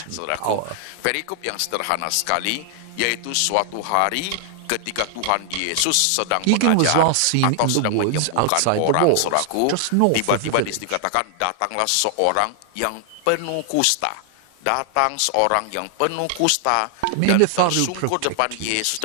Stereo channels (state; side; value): different; both; correlation 0.00